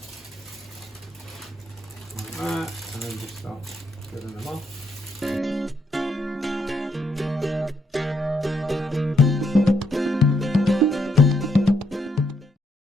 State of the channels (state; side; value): normal; both; correlation 0.76